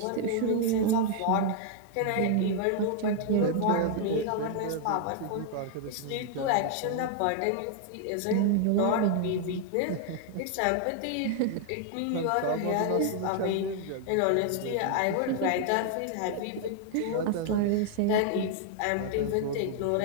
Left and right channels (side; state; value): both; different; correlation 0.00